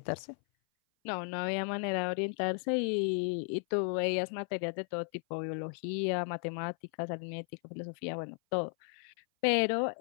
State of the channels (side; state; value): right; silent; 55 dB below the other